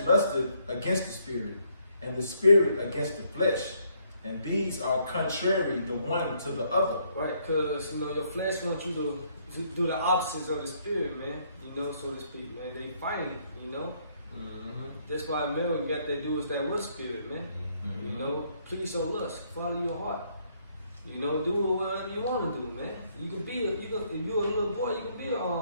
lusteth against the Spirit, and the Spirit against the flesh. And these are contrary the one to the other. Right, because, you know, your flesh wants you to do the opposites of the Spirit, man. You know, so to speak, man. They fighting, you know. That's why man, we got to do is that with Spirit, man. You know, please your lust, follow your heart. You know, do whatever you want to do, man. You can be if you're a little boy, you can be a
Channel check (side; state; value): both; inverted; correlation -0.70